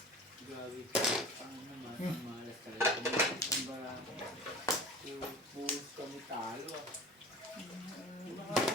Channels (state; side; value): normal; both; correlation 0.39